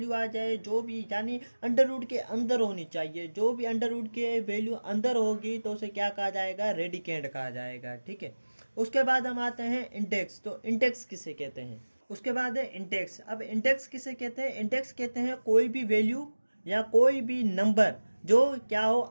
आ जाए जो भी, यानी अंडर रूट के अंदर होनी चाहिए। जो भी अंडर रूट के वैल्यू अंदर होगी तो उसे क्या कहा जाएगा? रेडिकेंट कहा जाएगा। ठीक है। उसके बाद हम आते हैं इंडेक्स। तो इंडेक्स किसे कहते हैं? उसके बाद है इंडेक्स। अब इंडेक्स किसे कहते हैं? इंडेक्स कहते हैं कोई भी वैल्यू या कोई भी नंबर जो क्या हो,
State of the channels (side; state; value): both; inverted; correlation -1.00